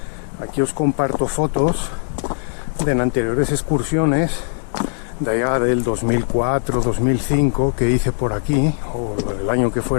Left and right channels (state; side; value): silent; right; digital silence